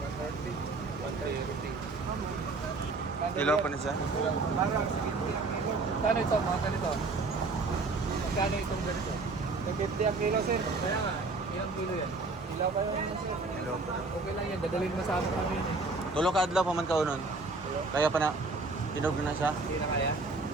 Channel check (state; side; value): quieter; left; 3.6 dB